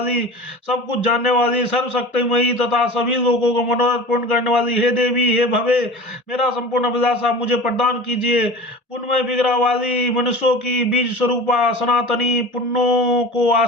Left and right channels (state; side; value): normal; both; correlation 0.36